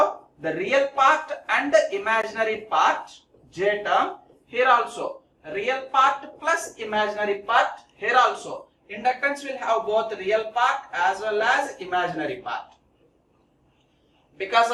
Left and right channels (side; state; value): both; identical; correlation 1.00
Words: the real part and the imaginary part, J term. Here also real part plus imaginary part. Here also inductance will have both real part as well as imaginary part. Because